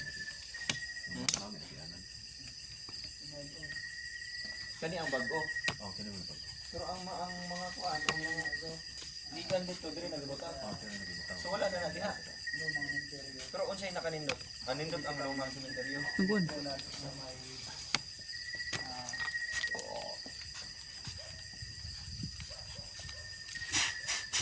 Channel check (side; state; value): left; noise; hum, 22 dB below the sound